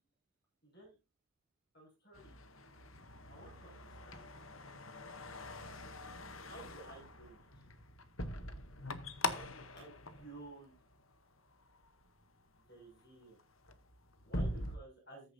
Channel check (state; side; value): normal; both; correlation 0.29